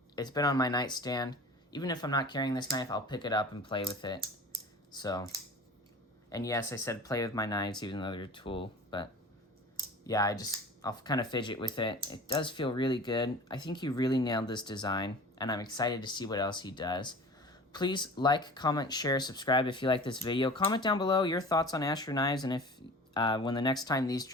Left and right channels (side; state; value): both; normal; correlation 0.40